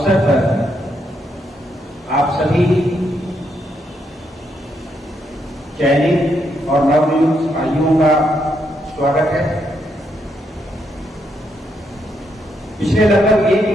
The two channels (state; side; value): normal; both; correlation 0.78